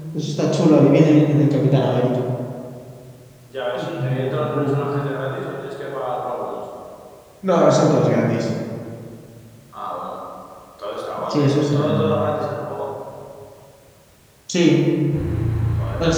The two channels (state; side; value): identical; both; correlation 1.00